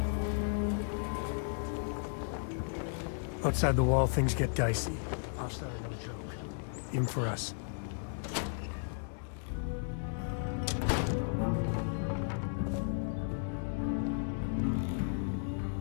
Outside the wall, things get dicey. Hostile are no joke. Even for us.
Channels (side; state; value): right; silent; digital silence